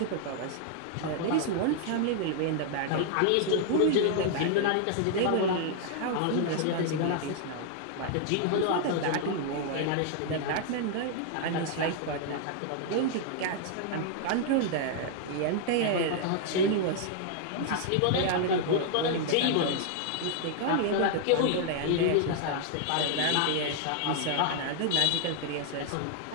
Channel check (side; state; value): both; different; correlation 0.00